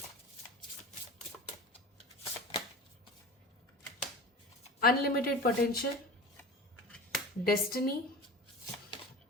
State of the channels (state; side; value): normal; both; correlation 0.33